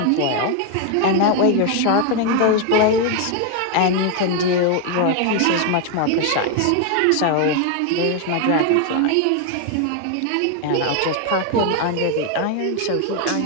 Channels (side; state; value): both; different; correlation 0.01